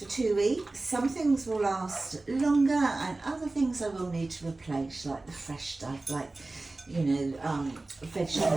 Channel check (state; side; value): quieter; left; 3.1 dB